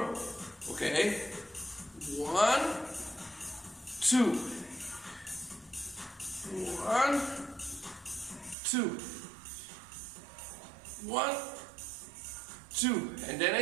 okay? 1, 2. 1, 2. 1, 2. And then I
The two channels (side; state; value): left; drops out; at 8.6 s